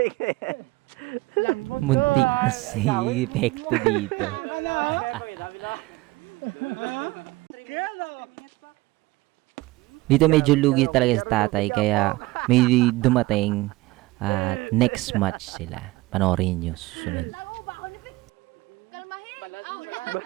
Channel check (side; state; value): left; quieter; 20.3 dB